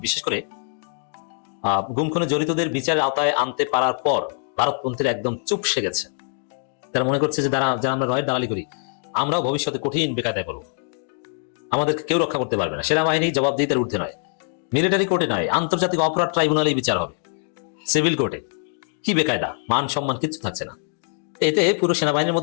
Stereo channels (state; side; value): silent; right; 58 dB below the other